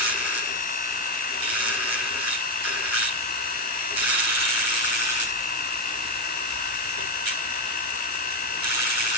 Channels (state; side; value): normal; both; correlation 0.11